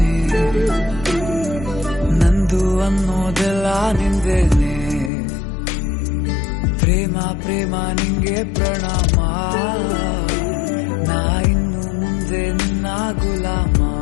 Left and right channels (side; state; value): right; drops out; at 5.1 s